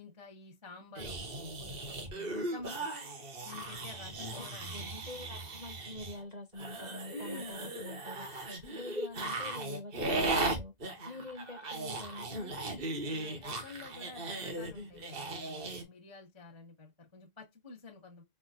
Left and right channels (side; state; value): left; late; 2.0 ms